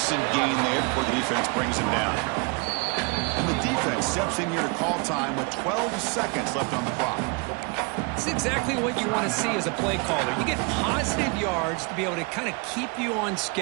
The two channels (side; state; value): left; quieter; 31.2 dB